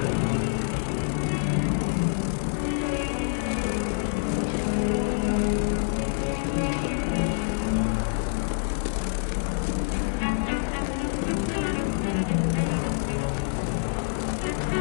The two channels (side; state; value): right; silent; digital silence